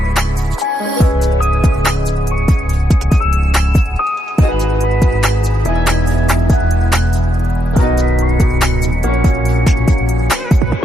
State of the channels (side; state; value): both; normal; correlation 0.81